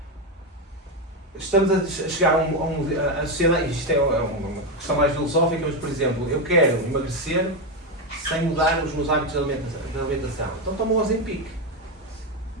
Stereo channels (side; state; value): both; normal; correlation 0.10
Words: estamos a chegar a sociedade, isto é uma questão mais filosófica, mas por exemplo, eu quero emagrecer sem mudar os meus hábitos de alimentação. Então tomo o Ozempic.